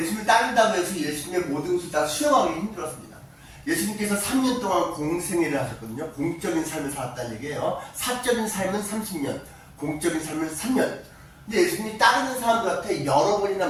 따른다고 해서 예수님의 모든 것을 다 수용하기 힘들었습니다. 예수님께서 3년 동안 공생애를 하셨거든요. 공적인 삶을 살았다는 얘기예요. 사적인 삶은 30년, 공적인 삶은 3년. 근데 예수님이 따르는 사람들한테 여러 번이나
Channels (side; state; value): both; identical; correlation 1.00